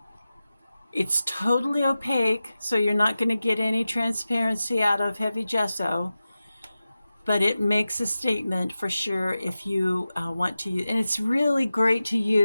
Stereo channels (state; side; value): inverted; both; correlation -0.94